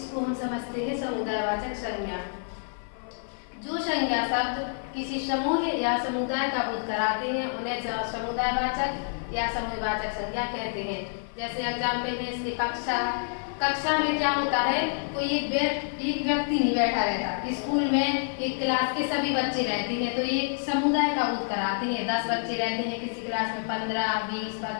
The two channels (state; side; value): silent; right; 58 dB below the other